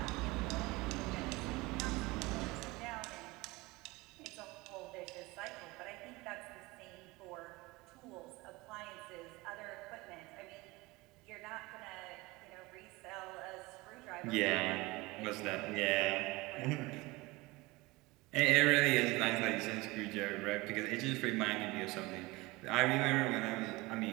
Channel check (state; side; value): quieter; left; 22.2 dB